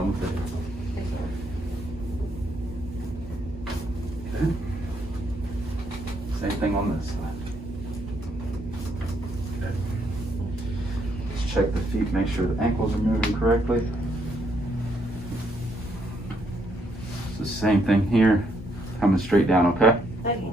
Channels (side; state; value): both; normal; correlation 0.73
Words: with it. Okay. Same thing on this side. Okay. Let's check the feet, make sure the ankles are moving correctly. It's the same thing here, coming straight down, okay? Okay.